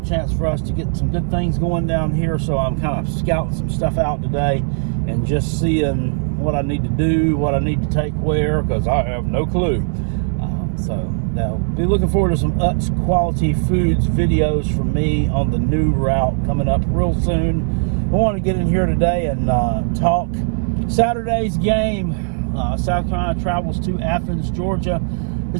chance for us to get some good things going down here, so I'm kind of scouting some stuff out today and just seeing what I need to do, what I need to take where, because I have no clue. So now, be looking forward to some Utz Quality Foods videos from me on the new route coming up real soon. I want to get in here today and talk Saturday's game. South Carolina travels to Athens, Georgia,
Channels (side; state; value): left; silent; 59 dB below the other